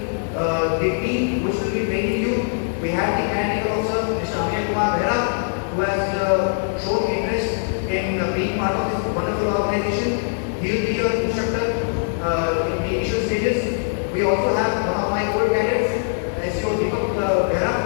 the team which will be training you. We have the technical officer, Mr. Amir Kumar Behra, who has shown interest in being part of this wonderful organization. He will be your instructor in the initial stages. We also have one of my good cadets, SEO Deepak Behra,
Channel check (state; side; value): silent; right; 61 dB below the other